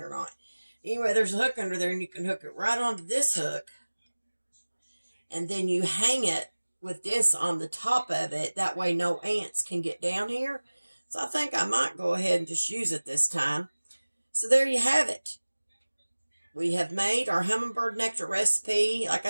or not. Anyway, there's a hook under there, and you can hook it right onto this hook, and then you hang it with this on the top of it. That way no ants can get down here. So I think I might go ahead and just use it this time. So there you have it. We have made our hummingbird nectar recipe. Like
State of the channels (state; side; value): inverted; both; correlation -1.00